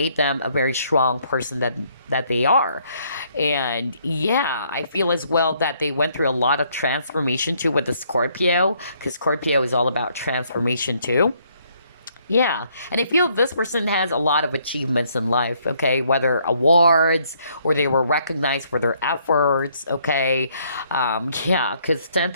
them a very strong person that they are. And yeah, I feel as well that they went through a lot of transformation too with the Scorpio, because Scorpio is all about transformation too. Yeah, and I feel this person has a lot of achievements in life, okay? Whether awards or they were recognized for their efforts, okay? Yeah, because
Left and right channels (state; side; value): inverted; both; correlation -0.68